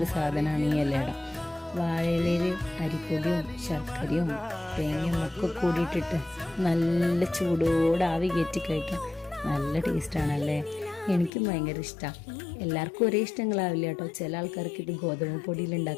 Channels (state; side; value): drops out; right; at 11.3 s